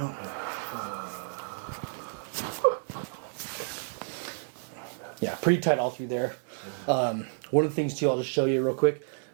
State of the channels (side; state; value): left; silent; digital silence